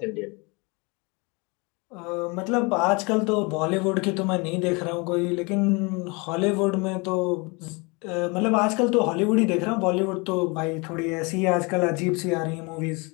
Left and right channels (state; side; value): quieter; right; 28.6 dB